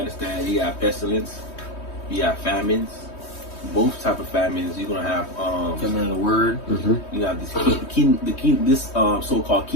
you got pestilence, you got famines, both type of famines. You're gonna have famine of the word. Mm-hmm. You got this so-called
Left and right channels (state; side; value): late; right; 3.2 ms